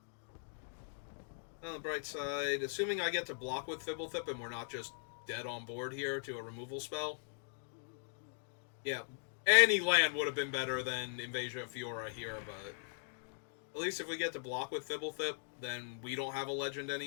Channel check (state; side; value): silent; right; digital silence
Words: On the bright side, assuming I get to block with Fibblethip and we're not just dead on board here to a removal spell. Yeah, any land would have been better than Invasion of Fiora here, but... at least if we get to block with Fibblethip, then we don't have a legend